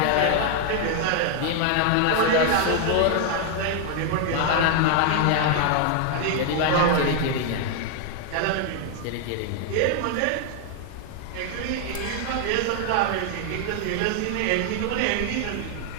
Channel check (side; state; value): both; different; correlation 0.00